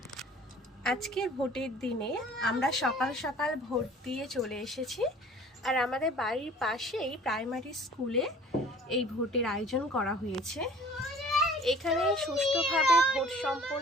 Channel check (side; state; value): both; normal; correlation 0.49